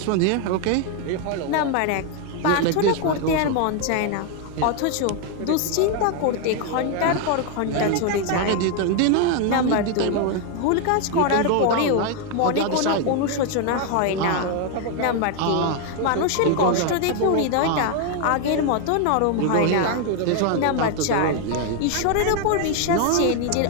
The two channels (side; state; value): both; different; correlation 0.01